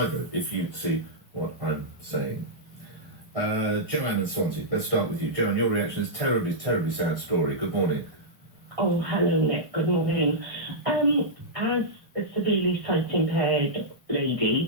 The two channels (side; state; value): left; late; 1.5 ms